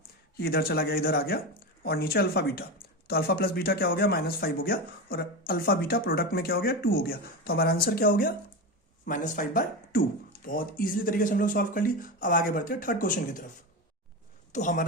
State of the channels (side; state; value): both; normal; correlation 0.20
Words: ये इधर चला गया, इधर आ गया, और नीचे अल्फा बीटा। तो अल्फा प्लस बीटा क्या हो गया, -5 हो गया, और अल्फा बीटा प्रोडक्ट में क्या हो गया 2 हो गया। तो हमारा आंसर क्या हो गया, -5/2। बहुत ईजिली तरीके से हम लोग सॉल्व कर ली। अब आगे बढ़ते हैं थर्ड क्वेश्चन की तरफ। तो